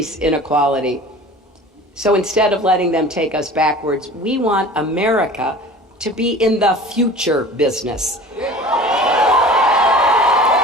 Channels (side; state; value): both; normal; correlation 0.41